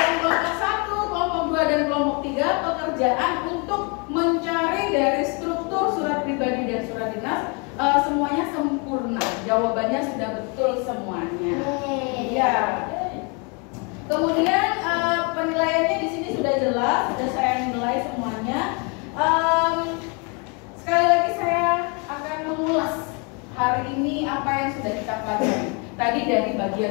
kelompok 1, kelompok 2, dan kelompok 3 pekerjaan untuk mencari dari struktur surat pribadi dan surat dinas semuanya sempurna. Jawabannya sudah betul semuanya. Ya. Kemudian penilaiannya di sini sudah jelas, sudah saya nilai semuanya. Sekali lagi saya akan mengulas hari ini apa yang sudah kita pelajari. Tadi dari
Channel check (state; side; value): quieter; right; 33.5 dB